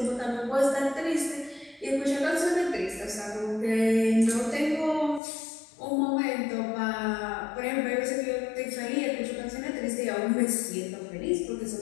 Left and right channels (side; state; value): right; drops out; at 5.2 s